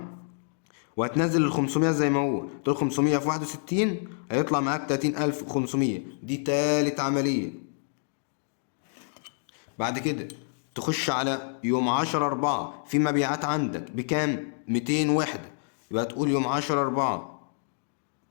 وهتنزل ال 500 زي ما هو، تقول 500 في 61 هيطلع معاك 30500. دي تالت عملية. بعد كده تخش على يوم 10/4 في مبيعات عندك بكام؟ 200 وحدة. يبقى تقول يوم 10/4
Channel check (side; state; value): right; silent; digital silence